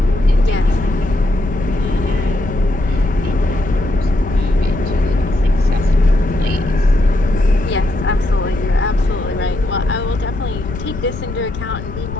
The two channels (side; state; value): left; noise; rumble, 8 dB below the sound